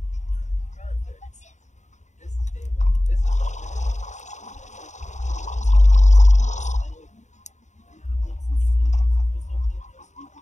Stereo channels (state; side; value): late; right; 0.34 ms